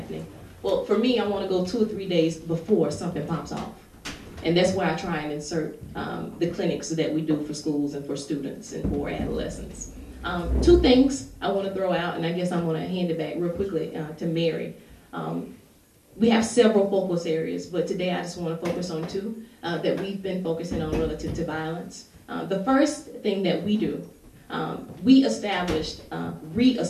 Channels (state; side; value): identical; both; correlation 1.00